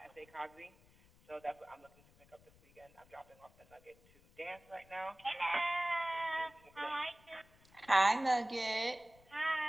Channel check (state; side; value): noise; left; rumble, 28 dB below the sound